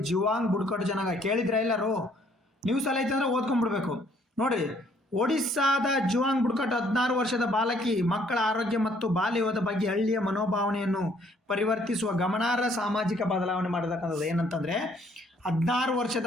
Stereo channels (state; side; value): normal; both; correlation 0.64